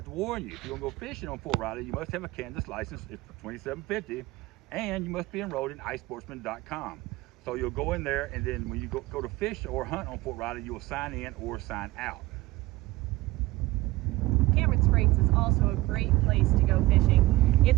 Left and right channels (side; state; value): left; quieter; 19.2 dB